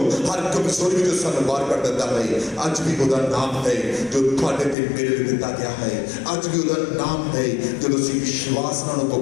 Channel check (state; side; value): drops out; right; at 4.8 s